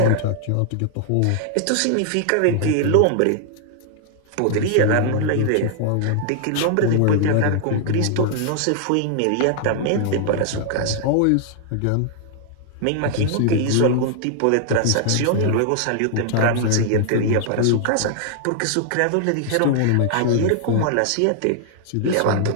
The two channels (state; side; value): different; both; correlation 0.00